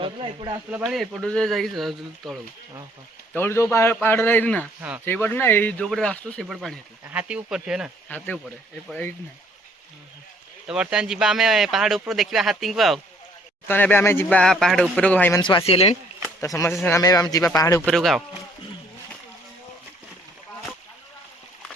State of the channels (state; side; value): normal; both; correlation 0.62